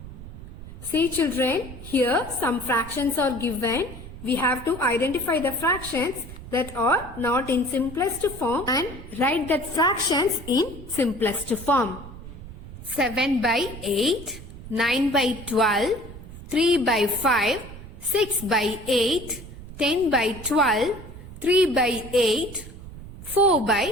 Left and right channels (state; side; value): noise; right; rumble, 14 dB below the sound